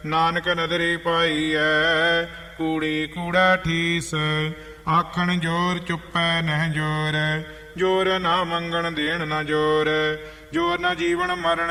ਨਾਨਕ ਨਦਰੀ ਪਾਈਐ, ਕੂੜੀ ਕੂੜਾ ਠੀਸ। ਆਖਣ ਜੋਰ ਚੁੱਪੈ ਨਹਿ ਜੋਰ, ਜੋਰ ਨਾ ਮੰਗਣ ਦੇਣ ਨਾ ਜੋਰ। ਜੋਰ ਨਾ ਜੀਵਨ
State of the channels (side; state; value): both; identical; correlation 1.00